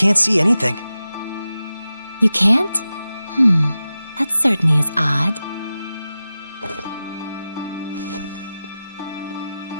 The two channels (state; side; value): inverted; both; correlation -0.94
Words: see anything. You can't? That certainly is odd.